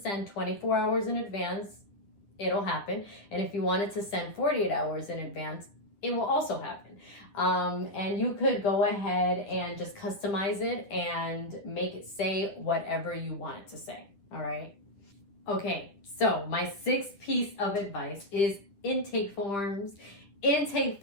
24 hours in advance, it'll happen. And if you want it to send 48 hours in advance, it will also happen. And you could go ahead and just customize it and make it say whatever you want it to say. All right. Okay, so my 6th piece of advice is intake forms. Intake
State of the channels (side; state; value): right; late; 10 ms